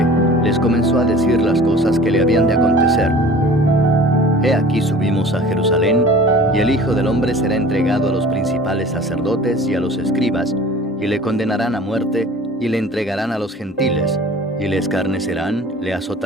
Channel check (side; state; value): both; normal; correlation 0.44